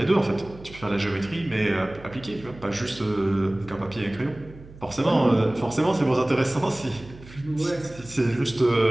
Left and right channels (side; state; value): right; noise; hum, 19 dB below the sound